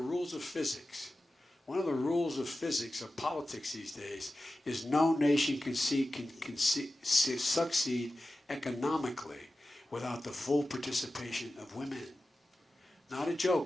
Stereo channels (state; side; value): normal; both; correlation 0.94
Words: of physics, One of the rules of physics, of politics these days, is no nation can succeed economically without the full participation of women. Not a